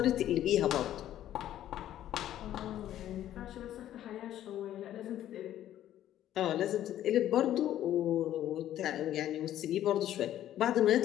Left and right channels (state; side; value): quieter; right; 12.2 dB